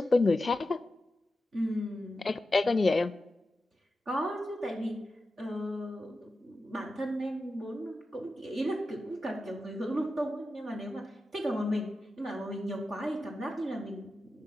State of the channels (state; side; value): normal; both; correlation 0.91